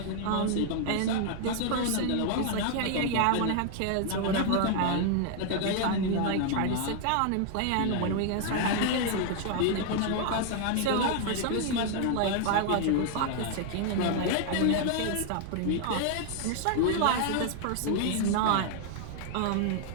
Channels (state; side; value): different; both; correlation 0.00